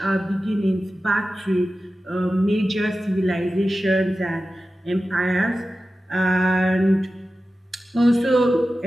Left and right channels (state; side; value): normal; both; correlation 0.94